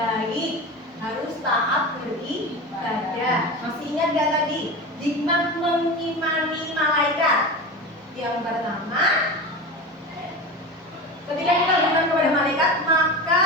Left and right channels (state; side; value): normal; both; correlation 0.27